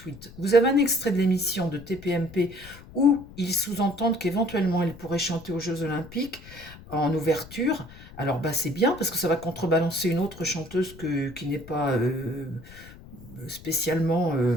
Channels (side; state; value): left; noise; rumble, 18 dB below the sound